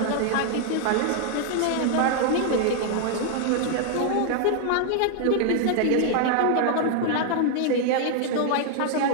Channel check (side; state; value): both; different; correlation 0.00